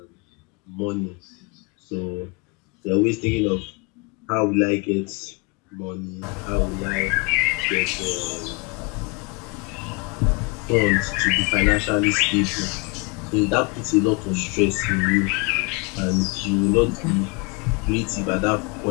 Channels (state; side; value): quieter; right; 30.2 dB